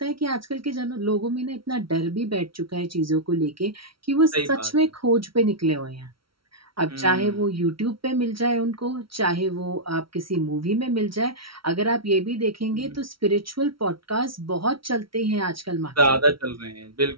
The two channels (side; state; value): left; late; 0.74 ms